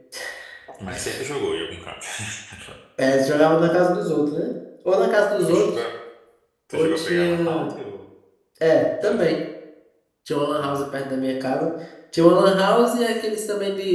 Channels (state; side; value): identical; both; correlation 1.00